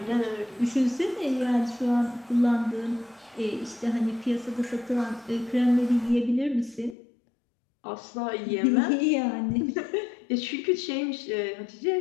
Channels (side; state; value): right; drops out; at 7.0 s